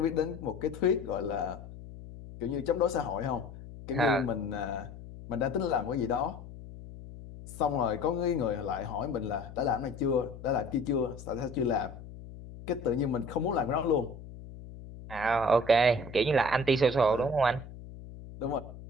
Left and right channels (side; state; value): left; noise; hum, 14 dB below the sound